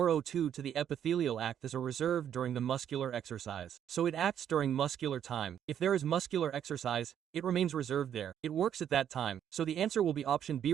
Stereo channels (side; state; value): left; quieter; 9.5 dB